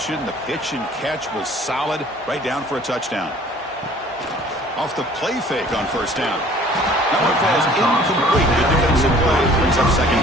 The pitch and catch was solid. Right down for a touchdown. Off the play fake on first down. That one falls incomplete. Good defensive play. Brings up second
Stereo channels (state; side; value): normal; both; correlation 0.53